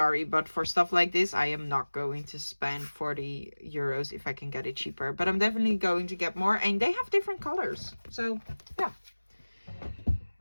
but for stuff like this, I am not going to spend 40 euros if I can get it cheaper. But I'm definitely going to get more, and they have different colors. So yeah.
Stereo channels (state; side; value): inverted; both; correlation -1.00